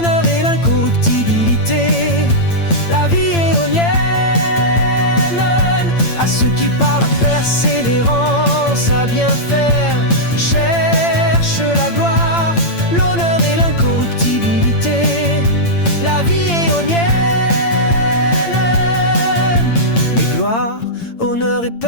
et l'incorruptibilité, la vie éonienne. À ceux qui par la persévérance à bien faire cherchent la gloire, l'honneur et l'incorruptibilité, la vie éonienne. Gloire, honneur et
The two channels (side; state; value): right; late; 8.8 ms